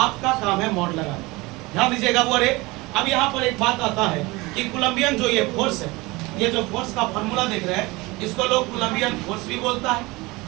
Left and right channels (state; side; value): quieter; left; 22.8 dB